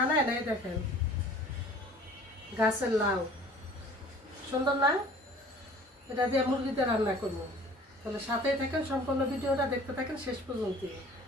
এই দেখেন, গাছের লাউ। সুন্দর না? এটা দিয়ে মুরগিতে রান্না করবো। তাহলে সাথেই থাকেন, সম্পূর্ণ ভিডিওটা দেখতে থাকেন শেষ পর্যন্ত।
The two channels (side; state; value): both; normal; correlation 0.48